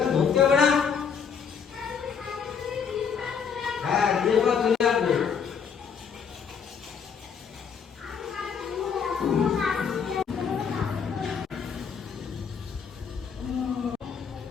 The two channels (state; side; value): quieter; right; 6.6 dB